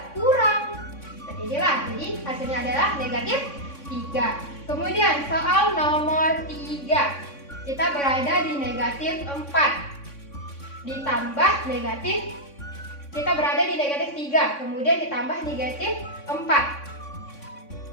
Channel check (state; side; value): late; right; 3.6 ms